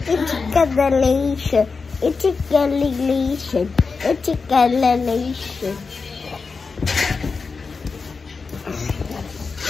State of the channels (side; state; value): right; quieter; 4.7 dB